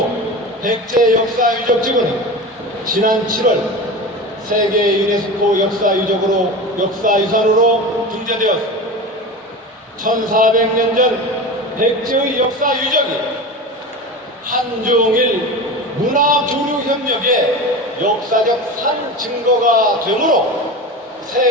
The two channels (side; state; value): both; normal; correlation 0.28